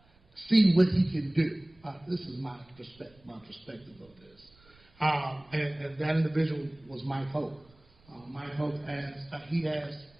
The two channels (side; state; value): right; noise; rumble, 29 dB below the sound